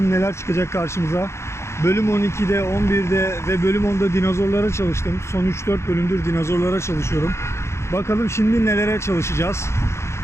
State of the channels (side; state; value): right; late; 0.13 ms